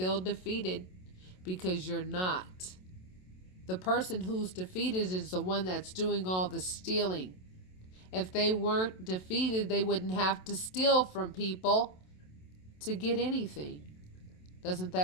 defeated, because you're not. The person who's defeated is the one that's doing all the stealing. If they weren't defeated, they wouldn't have to steal from people to get anything. Doesn't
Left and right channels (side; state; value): right; late; 27 ms